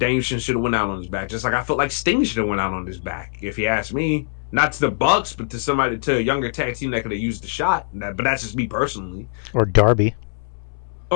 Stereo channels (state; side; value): silent; right; 64 dB below the other